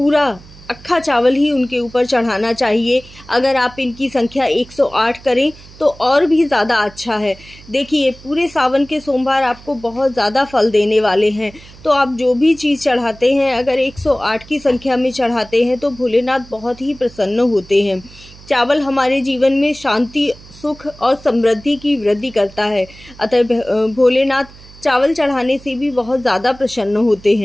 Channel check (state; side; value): noise; right; hum, 21 dB below the sound